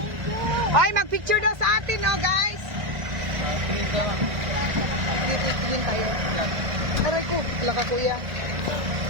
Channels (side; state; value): left; late; 1.5 ms